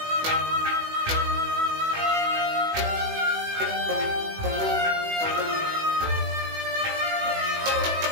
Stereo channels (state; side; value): late; left; 18 ms